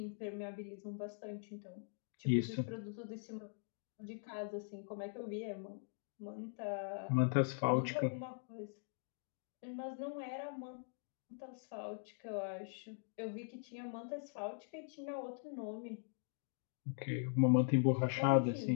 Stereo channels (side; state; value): right; silent; digital silence